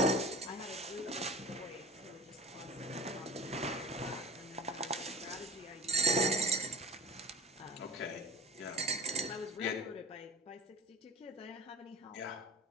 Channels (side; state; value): both; normal; correlation 0.37